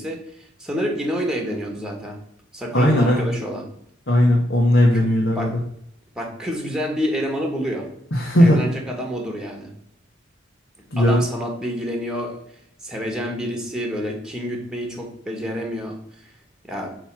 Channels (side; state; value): both; normal; correlation 0.77